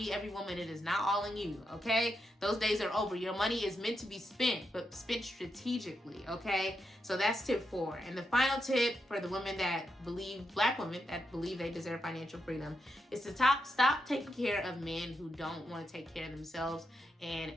every woman. It is not all in you. Okay. Those days are over. Your money is meant to be spent, but spent strategically. Okay. So that's tip 4. And the final tip for the women that Black women that believe they deserve financial freedom, is to stop taking care of men who don't want to take care of themselves and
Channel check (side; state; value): both; normal; correlation 0.84